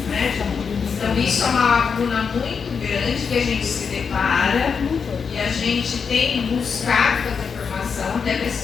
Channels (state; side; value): quieter; right; 6.0 dB